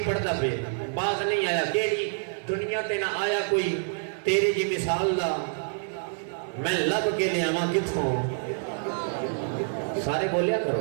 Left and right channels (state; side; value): silent; left; 58 dB below the other